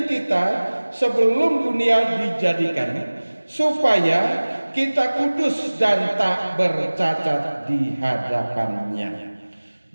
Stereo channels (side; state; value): both; inverted; correlation -1.00